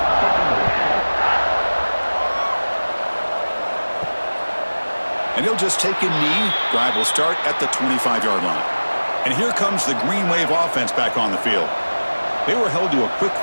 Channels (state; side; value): inverted; both; correlation -1.00